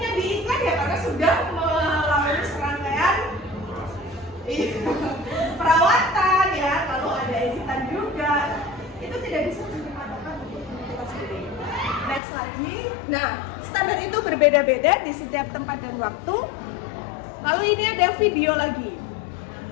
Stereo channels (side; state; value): right; drops out; at 12.2 s